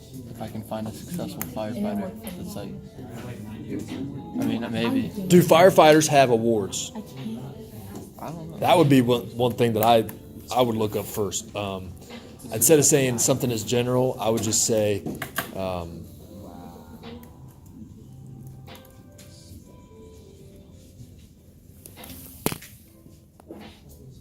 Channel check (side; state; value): both; identical; correlation 1.00